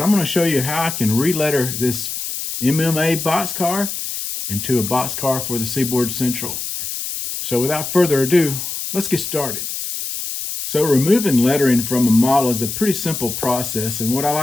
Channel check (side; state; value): left; noise; hiss, 5 dB below the sound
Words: going to show you how I can re-letter this MMA boxcar into a boxcar for the Seaboard Central. So without further ado, let's get started. So removing lettering from a model is a pretty simple process, and what I